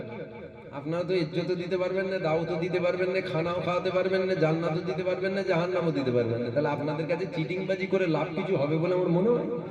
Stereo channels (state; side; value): identical; both; correlation 1.00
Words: আপনারা তো ইজ্জতও দিতে পারবেন না, দাওয়াতও দিতে পারবেন না, খানাও খাওয়াতে পারবেন না, জান্নাতও দিতে পারবেন না, জাহান্নামও দিতে পারবেন না। তাহলে আপনাদের কাছে চিটিংবাজি করে লাভ কিছু হবে বলে আমার মনে হয়?